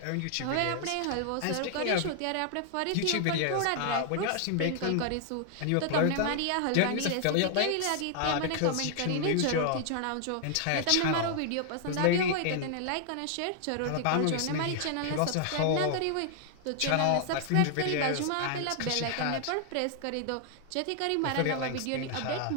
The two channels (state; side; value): different; both; correlation 0.00